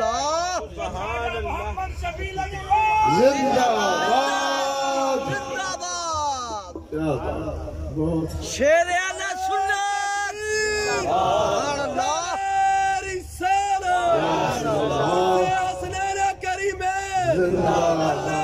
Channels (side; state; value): both; identical; correlation 1.00